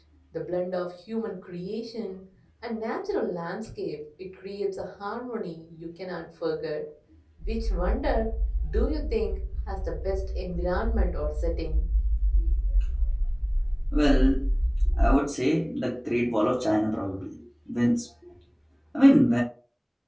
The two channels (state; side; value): identical; both; correlation 1.00